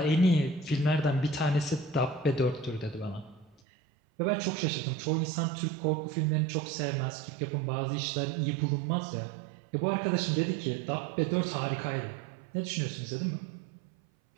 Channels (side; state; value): left; drops out; at 3.6 s